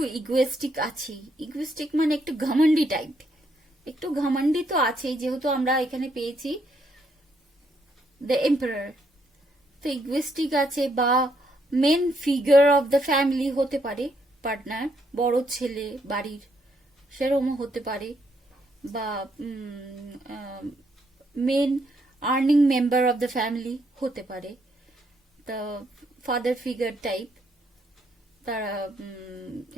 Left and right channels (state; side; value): normal; both; correlation 0.74